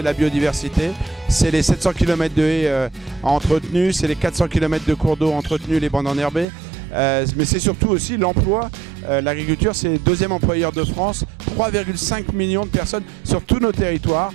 la biodiversité, c'est les 700 km de haies entretenues, c'est les 400 km de cours d'eau entretenus, les bandes enherbées, mais c'est surtout aussi l'emploi. L'agriculture, c'est le deuxième employeur de France, 3,5 millions de personnes sur tous nos territoires.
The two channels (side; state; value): left; drops out; at 6.5 s